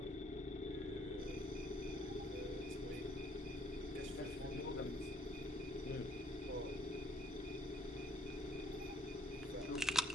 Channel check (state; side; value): normal; both; correlation 0.64